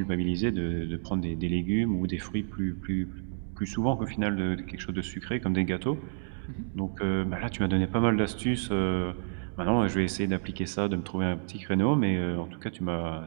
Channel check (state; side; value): silent; left; digital silence